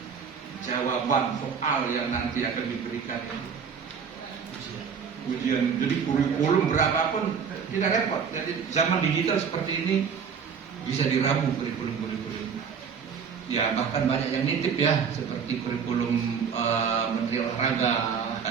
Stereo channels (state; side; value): quieter; left; 6.6 dB